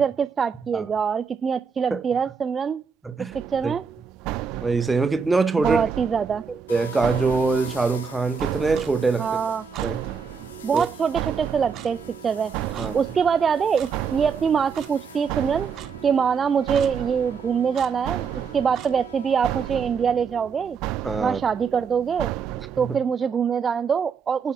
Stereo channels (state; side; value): quieter; left; 5.9 dB